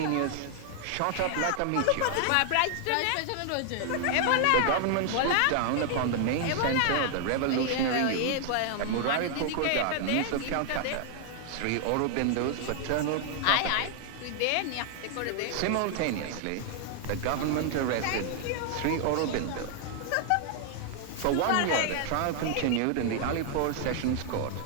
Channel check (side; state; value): both; different; correlation 0.00